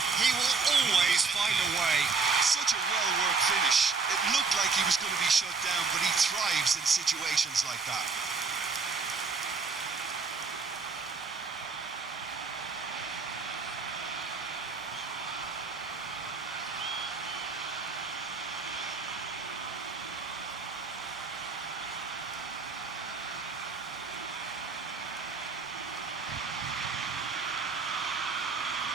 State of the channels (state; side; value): quieter; left; 4.6 dB